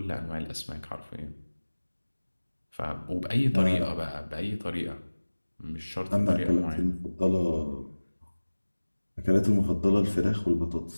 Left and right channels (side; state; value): both; inverted; correlation -1.00